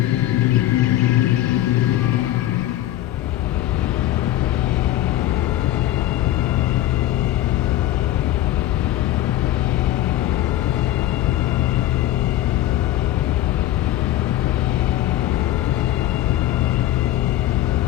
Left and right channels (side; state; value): right; quieter; 13.8 dB